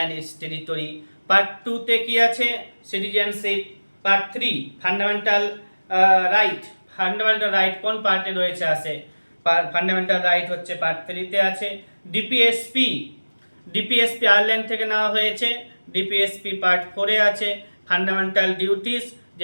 its territory. Part 2-তে কি আছে? Citizenship. Part 3 fundamental right. Fundamental right কোন পার্টে রয়েছে? আছে ফান্ডামেন্টাল রাইট হচ্ছে পার্ট 3-তে আছে। ডিপিএসপি আয়ারল্যান্ড থেকে নেওয়া হয়েছে। ডিপিএসপি পার্ট 4-এ আছে। ফান্ডামেন্টাল ডিউটিস,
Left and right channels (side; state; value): both; inverted; correlation -1.00